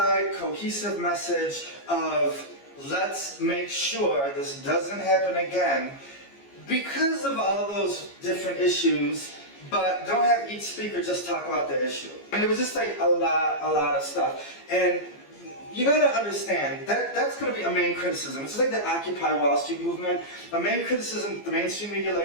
cohesive message of let's make sure this doesn't happen again because of all those different issues, but don't have each speaker just talk about the issue. And it was just like a lot of stuff. And you gotta understand that that's gonna be a main criticism. It's like the Occupy Wall Street movement. A main criticism the mainstream media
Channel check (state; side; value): late; right; 15 ms